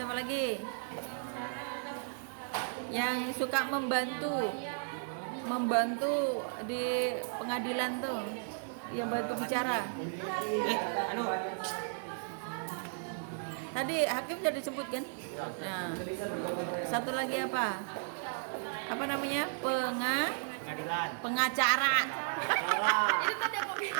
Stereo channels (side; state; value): left; silent; digital silence